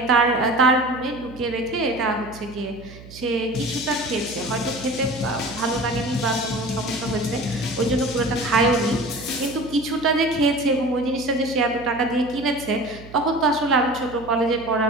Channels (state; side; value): noise; right; hum, 17 dB below the sound